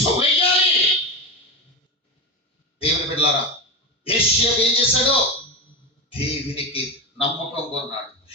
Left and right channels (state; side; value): normal; both; correlation 0.18